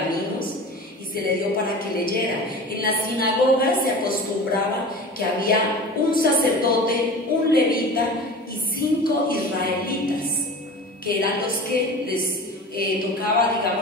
y se le dio para que leyera. En la sinagoga se acostumbraba que había un sacerdote, un levita y 5 israelitas, que eran los que les tocaba,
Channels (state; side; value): normal; both; correlation 0.35